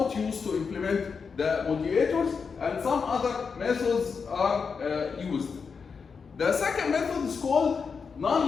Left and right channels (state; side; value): quieter; right; 5.6 dB